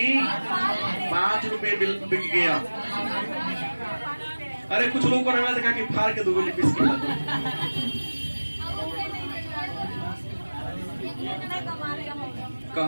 5 रुपये बिक गया। अरे कुछ लोगों को देखा कि फाड़ के 2 गोली पीस के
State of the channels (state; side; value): inverted; both; correlation -1.00